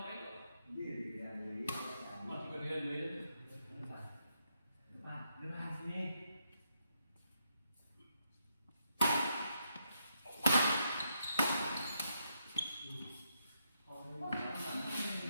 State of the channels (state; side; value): inverted; both; correlation -0.79